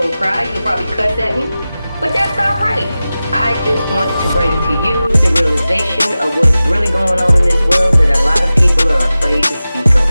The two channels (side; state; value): both; inverted; correlation -0.95